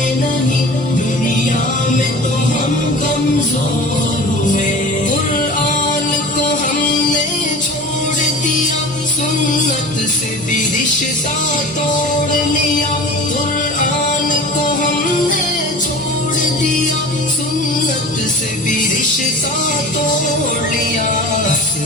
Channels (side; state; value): both; normal; correlation 0.38